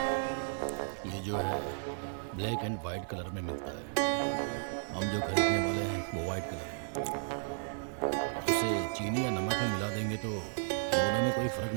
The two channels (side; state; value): left; silent; digital silence